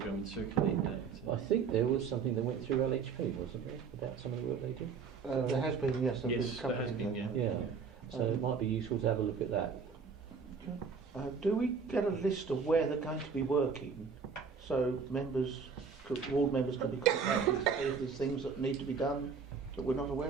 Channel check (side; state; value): left; quieter; 5.7 dB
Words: and circulate that. I think there was something that went through LHP, wasn't there, about some of the work they do? There has been, yes. Yes, there has been, yeah. So it might be useful to have a look at that. Do we get a list of where they're going to be working, so ward members can be contacted if there's things that need to be done that we're not aware